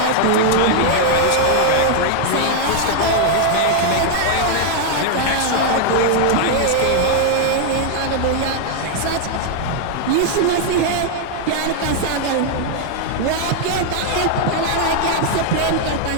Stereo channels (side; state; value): both; different; correlation 0.00